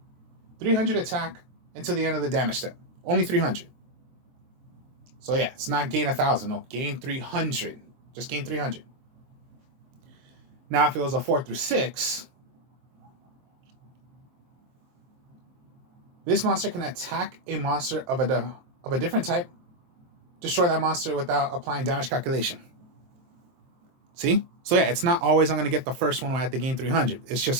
300 attack until the end of the damage step. Only 300. So yeah, it's not gain 1,000. No, gain 300. Just gain 300. Now, if it was a 4 through 6, this monster can attack a monster of a different type, destroy that monster without applying damage calculation. See? So yeah, it's not always I'm going to get the first one when I have to gain 300. It's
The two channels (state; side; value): late; left; 23 ms